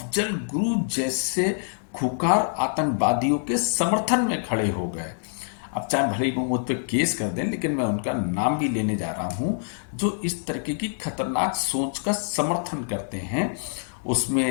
गुरु जैसे खुकार आतंकवादियों के समर्थन में खड़े हो गए। अब चाहे भले ही वो मुझ पर केस कर दें, लेकिन मैं उनका नाम भी लेने जा रहा हूं जो इस तरीके की खतरनाक सोच का समर्थन करते हैं।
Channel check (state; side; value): silent; right; digital silence